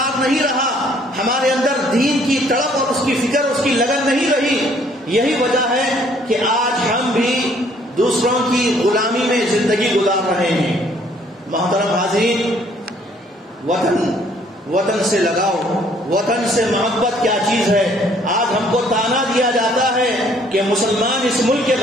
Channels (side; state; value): both; normal; correlation 0.62